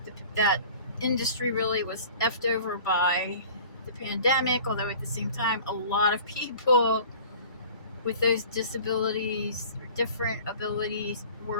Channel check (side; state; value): both; inverted; correlation -0.45